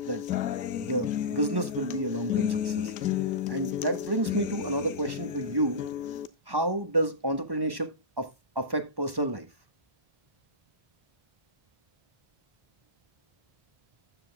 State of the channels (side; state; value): left; late; 1.1 ms